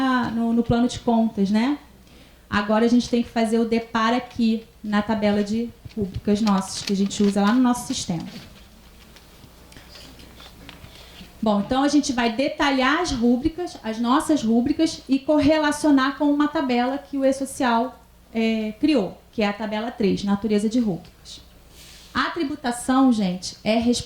no plano de contas, né? Agora a gente tem que fazer o depara aqui, na tabela de rúbricas nossas, que a gente usa lá no nosso sistema. Bom, então a gente vai detalhar as rúbricas, as nossas rúbricas, e correlacionar com uma tabela que o E-Social criou, que é a tabela 3, natureza de rúbricas. A tributação, gente, é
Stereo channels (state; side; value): identical; both; correlation 1.00